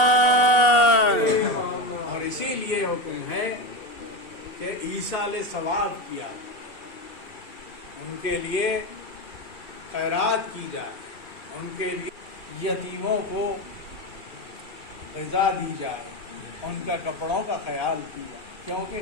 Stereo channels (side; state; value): right; late; 2.7 ms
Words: اور اسی لیے حکم ہے کہ ایصال ثواب کیا جائے، ان کے لیے خیرات کی جائے، ان کے لیے یتیموں کو غذا دی جائے، ان کا کپڑوں کا خیال کیا جائے، کیونکہ